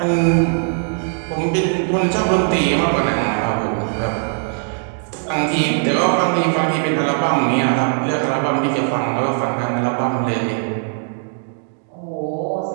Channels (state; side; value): silent; left; 66 dB below the other